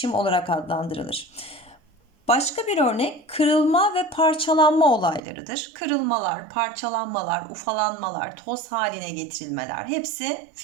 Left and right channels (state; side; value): drops out; left; at 5.2 s